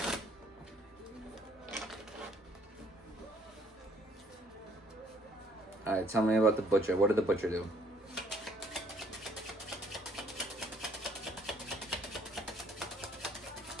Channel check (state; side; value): normal; both; correlation 0.63